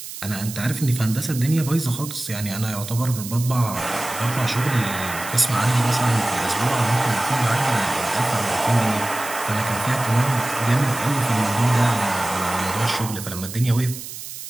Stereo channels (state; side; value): noise; right; hiss, 11 dB below the sound